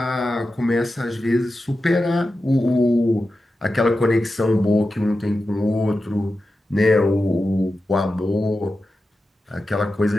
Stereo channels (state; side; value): normal; both; correlation 0.91